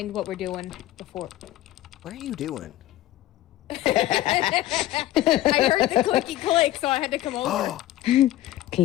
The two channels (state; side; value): quieter; right; 14.7 dB